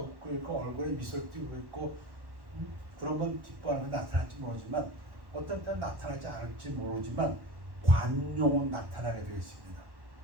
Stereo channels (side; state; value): left; late; 1.1 ms